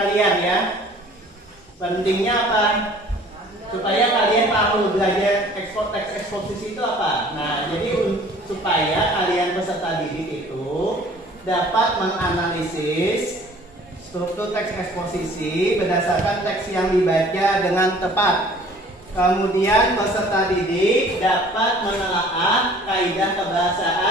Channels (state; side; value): normal; both; correlation 0.51